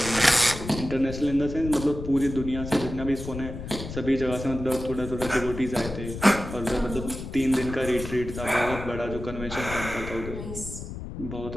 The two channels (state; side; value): noise; left; rumble, 9 dB below the sound